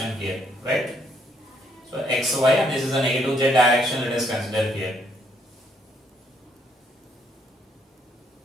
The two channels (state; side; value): normal; both; correlation 0.71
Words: here, right? So x, y, and this is the negative z direction, let us consider here.